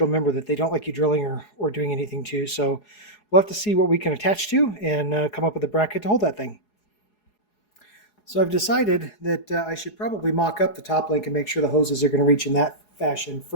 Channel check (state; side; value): late; right; 4.8 ms